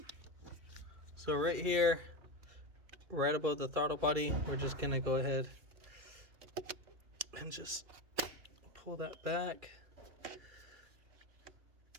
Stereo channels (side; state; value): left; late; 2.4 ms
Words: So right here, right above the throttle body, we're just gonna go ahead and just pull that back.